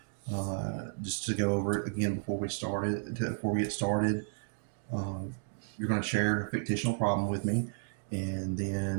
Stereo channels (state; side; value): silent; left; digital silence